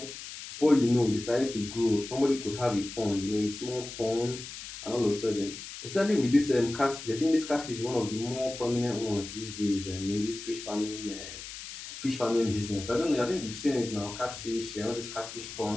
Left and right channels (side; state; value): left; noise; hiss, 11 dB below the sound